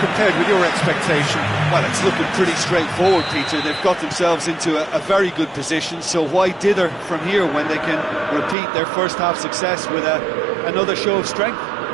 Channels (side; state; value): left; drops out; at 8.6 s